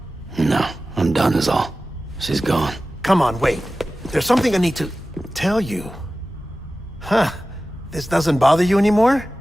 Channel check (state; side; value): normal; both; correlation 0.95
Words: No, I'm done is all. She's gone. Come on, wait. There's something I need to tell you. Huh. This doesn't bother you anymore?